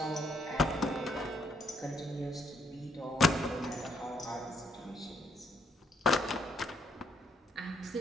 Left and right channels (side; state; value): both; normal; correlation 0.72